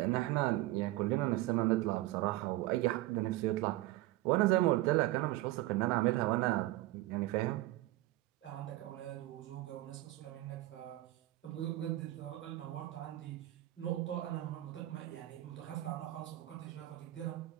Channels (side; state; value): left; quieter; 17.3 dB